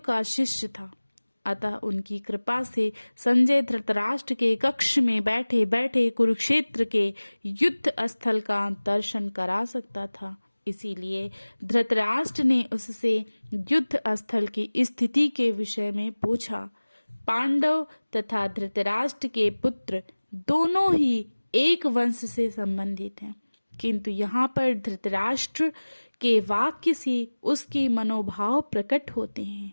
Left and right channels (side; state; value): both; inverted; correlation -1.00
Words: शिष्य था, अतः उनकी कृपा से संजय धृतराष्ट्र के कक्ष में बैठे बैठे कुरुक्षेत्र के युद्ध स्थल का दर्शन करा सकता था। इसीलिए धृतराष्ट्र ने उससे युद्ध स्थल की स्थिति के विषय में पूछा। पांडव तथा धृतराष्ट्र के पुत्र दोनों ही एक वंश से संबंधित हैं, किंतु यहाँ पर धृतराष्ट्र के वाक्य से उसके मनोभाव प्रकट होते हैं।